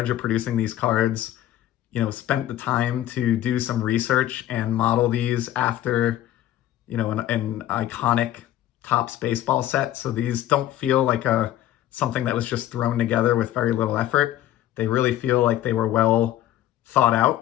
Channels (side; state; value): right; quieter; 13.1 dB